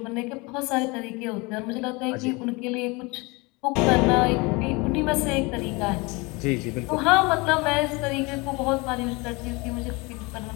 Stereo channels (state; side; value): quieter; right; 26.3 dB